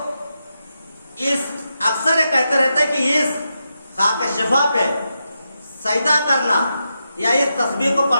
اس اکثر یہ کہتے رہتے کہ اس خاک شفا پہ سجدہ کرنا یا اس تصویر کو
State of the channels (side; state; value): both; inverted; correlation -0.87